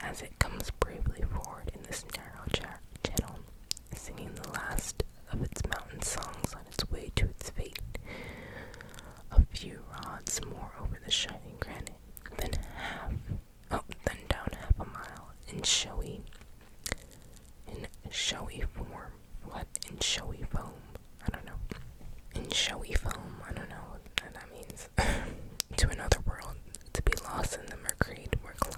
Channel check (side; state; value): both; identical; correlation 1.00